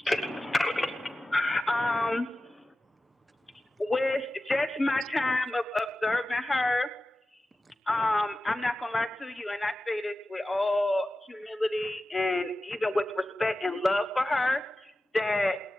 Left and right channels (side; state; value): both; normal; correlation 0.94